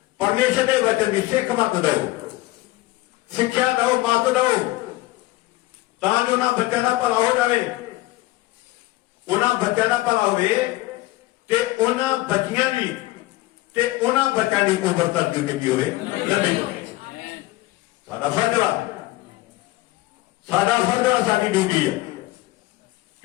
ਪਰਮੇਸ਼ਰ ਦੇ ਵਚਨ ਦੀ ਸਿੱਖ ਮਤ ਦਿਓ, ਸਿੱਖਿਆ ਦਿਓ, ਮਤ ਦਿਓ, ਤਾਂ ਜੋ ਉਹਨਾਂ ਬੱਚਿਆਂ ਦਾ ਭਲਾ ਹੋ ਜਾਵੇ। ਉਹਨਾਂ ਬੱਚਿਆਂ ਦਾ ਭਲਾ ਹੋਵੇ ਤੇ ਉਹਨਾਂ ਬੱਚਿਆਂ ਦੀ ਤੇ ਉਹਨਾਂ ਬੱਚਿਆਂ ਦੀ ਉਮਰ ਤੱਕ ਜ਼ਿੰਦਗੀ ਹੋਵੇ, ਲੰਮੀ ਹੋਵੇ। ਸਾਡਾ ਫਰਜ਼ ਵਾ, ਸਾਡਾ ਫਰਜ਼ ਵਾ, ਸਾਡੀ ਡਿਊਟੀ ਹੈ।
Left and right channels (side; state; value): right; quieter; 18.8 dB